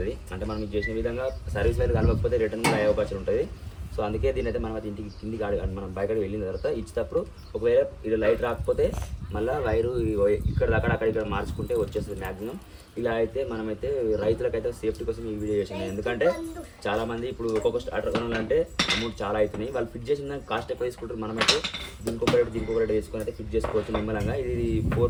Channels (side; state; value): both; identical; correlation 1.00